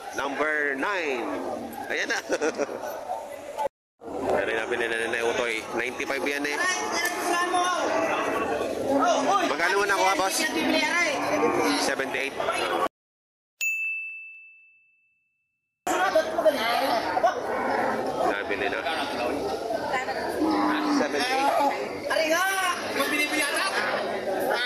Number 9. Ayan na. Pero nabili na nila Utoy. 95 yan eh. Magkano mo nakuha, boss? 78. Nabili na. 78. Ari nga! Yung binibili ata?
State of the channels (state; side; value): identical; both; correlation 1.00